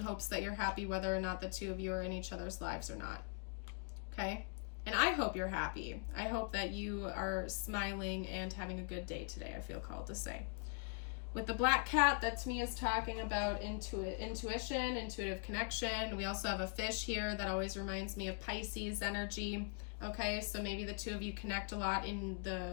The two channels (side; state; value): right; quieter; 40.0 dB